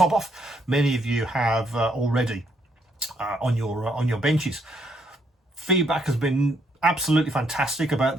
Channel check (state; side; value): normal; both; correlation 0.73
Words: off, many of you have already on your benches. Feedback has been absolutely fantastic about